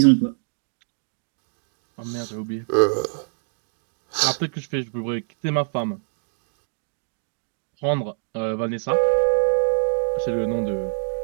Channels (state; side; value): silent; left; digital silence